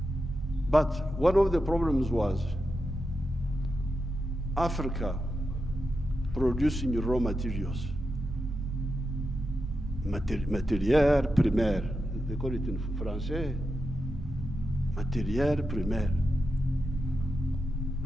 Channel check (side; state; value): both; normal; correlation 0.88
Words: But one of the problems was Africa producing raw materials, matière primaire, they call it in Français, matière primaire.